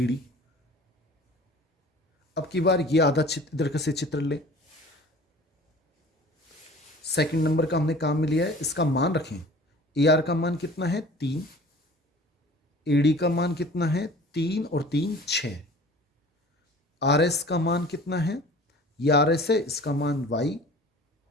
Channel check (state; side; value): normal; both; correlation 0.45